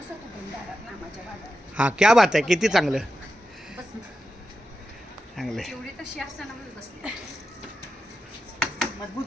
हां क्या बात आहे. किती चांगलं चांगलं आहे.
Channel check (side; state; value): both; normal; correlation 0.90